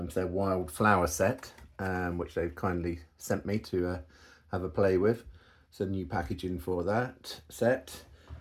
their wildflower set, which they've kindly sent me to have a play with. So new packaging for that set.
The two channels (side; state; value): both; identical; correlation 1.00